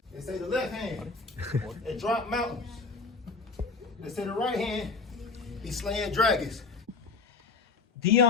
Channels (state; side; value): quieter; right; 4.4 dB